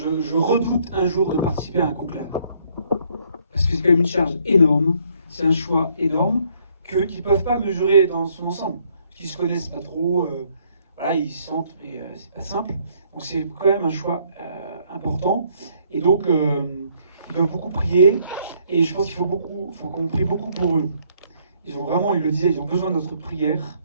redoute un jour de participer à un conclave. Parce que c'est quand même une charge énorme, c'est un choix énorme qu'ils ne peuvent pas mesurer dans son ensemble. Qu'ils ne se connaissent pas trop, voilà, ils se sentent, mais c'est pas simple. Donc c'est quand même un choix important. Et donc, ils doivent beaucoup prier. Et je pense qu'il faut qu'on prie beaucoup pour eux. Ils le disaient, ils ont besoin de notre prière.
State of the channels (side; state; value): both; inverted; correlation -0.67